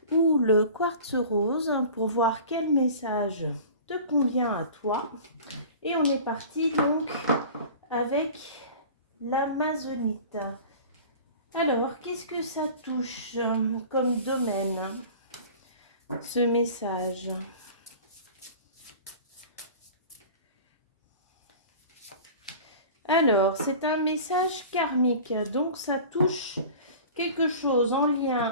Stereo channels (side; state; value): both; inverted; correlation -0.40